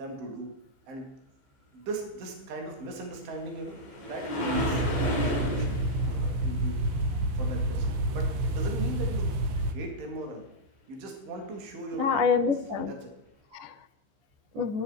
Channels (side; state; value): left; late; 15 ms